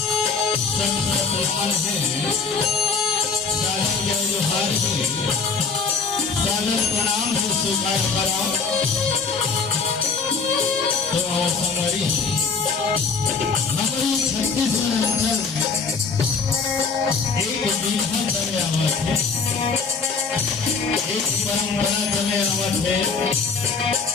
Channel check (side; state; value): right; quieter; 4.9 dB